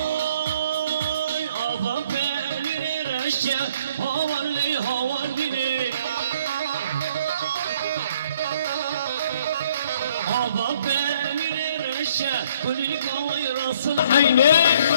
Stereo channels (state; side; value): inverted; both; correlation -0.61